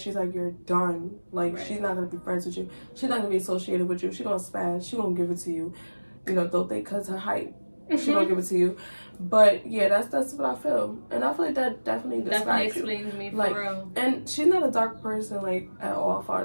like, you're done. Like, she's not gonna be friends with you. She's not gonna be associated with you. She's gonna spaz. She gonna give it to you. Though they cut her height, she gonna give it to you. But yeah, that's what I feel, and I feel like that definitely describes explains me for like, real. And she's not a dark person like at all, as far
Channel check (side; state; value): both; inverted; correlation -1.00